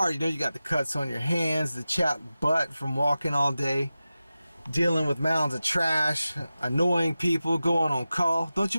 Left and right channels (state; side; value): inverted; both; correlation -0.94